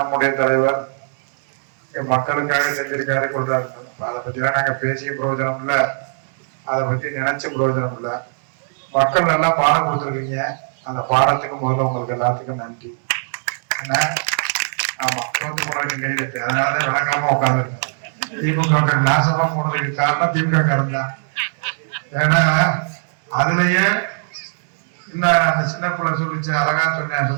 தலைவர் மக்களுக்காக செஞ்சிருக்காரு கொள்றாரு. அதை பத்தி எல்லாம் நாங்க பேசிய பிரயோஜனம் இல்ல, அதை பத்தி நினைச்ச பிரயோஜனம் இல்ல. மக்கள் நல்லா பாடம் கொடுத்துருக்கீங்க. அந்த பாடத்துக்கு முதல்ல உங்களுக்கு எல்லாத்துக்கும் நன்றி. என்ன ஆமா, தோத்து போனதுக்கு கைது. அதனாலதான் வழங்காம உட்காந்துருக்கேன். திமுக நாசமா போனதுக்கு காரணம் திமுக காரன் தான். ஏன்னா அதுலயே இல்ல, அந்த சின்ன பிள்ளை சொல்லிச்சு, அழகா சொன்னேன்,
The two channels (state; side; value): silent; left; 66 dB below the other